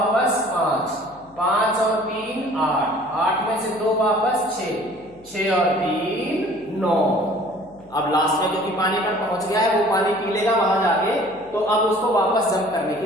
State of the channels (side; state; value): left; noise; hum, 27 dB below the sound